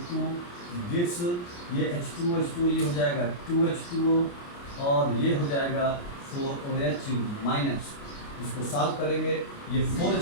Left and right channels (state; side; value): late; right; 29 ms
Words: गिव्स ये H2O ये हो जाएगा 2H2O और ये हो जाएगा 4OH-। इसको सॉल्व करेंगे, ये